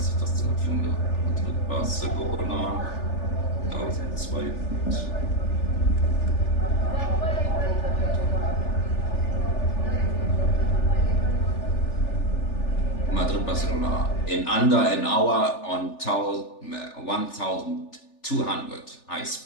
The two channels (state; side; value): late; right; 3.4 ms